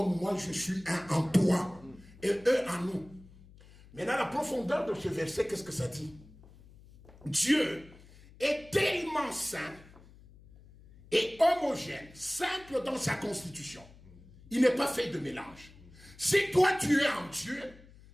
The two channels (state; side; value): noise; left; hum, 23 dB below the sound